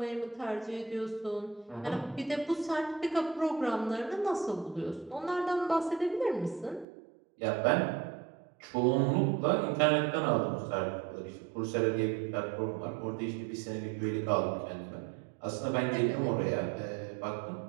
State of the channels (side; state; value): left; drops out; at 6.9 s